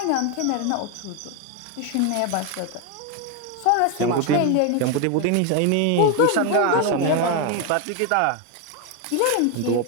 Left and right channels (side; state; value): both; different; correlation 0.01